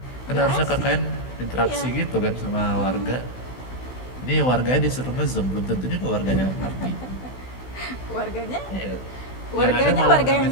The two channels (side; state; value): right; late; 16 ms